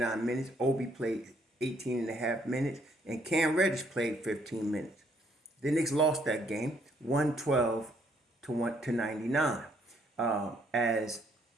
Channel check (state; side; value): normal; both; correlation 0.68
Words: minutes. Obi played 18 and a half minutes. And Cam Reddish played 15 minutes. The Knicks lost that game 112 to 99 as